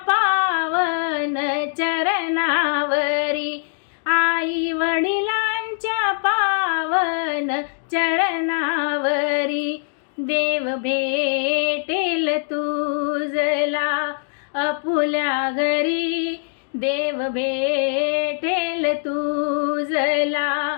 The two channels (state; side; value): silent; right; digital silence